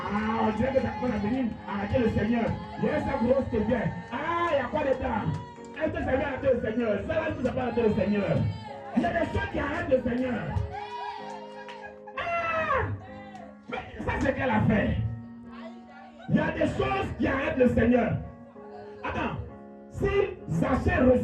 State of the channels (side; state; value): both; identical; correlation 1.00